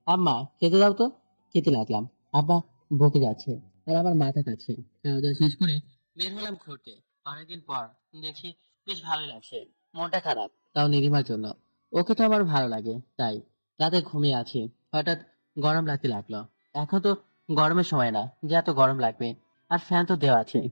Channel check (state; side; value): inverted; both; correlation -1.00